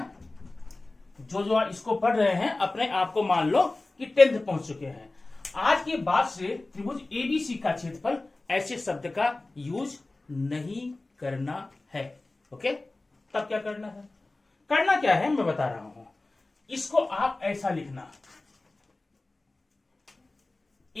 जो इसको पढ़ रहे हैं अपने आप को मान लो कि 10th पहुंच चुके हैं। आज के बाद से त्रिभुज एबीसी का क्षेत्रफल ऐसे शब्द का यूज नहीं करना है। ओके, तब क्या करना है? करना क्या है मैं बता रहा हूं। इसको आप ऐसा लिखना,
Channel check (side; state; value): right; quieter; 3.1 dB